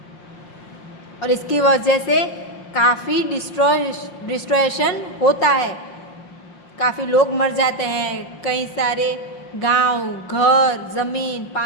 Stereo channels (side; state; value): right; late; 5.6 ms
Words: और इसकी वजह से काफ़ी डिस्ट्रॉयशन होता है, काफ़ी लोग मर जाते हैं, कई सारे गांव, घर, ज़मीन,